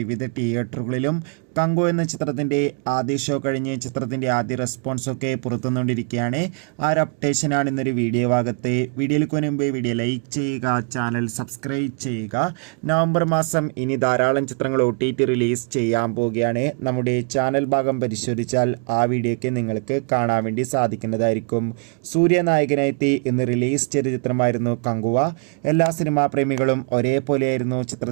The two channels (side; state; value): left; quieter; 38.5 dB